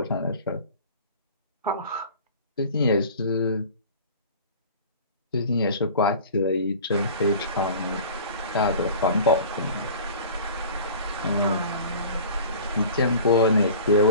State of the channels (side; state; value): both; inverted; correlation -0.41